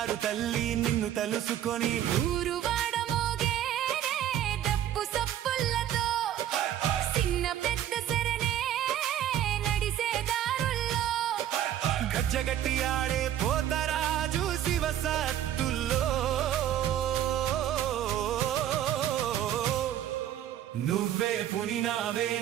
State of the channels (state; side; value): quieter; left; 11.3 dB